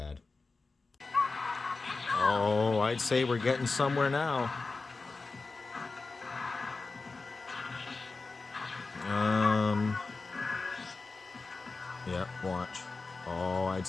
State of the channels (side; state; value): right; quieter; 3.9 dB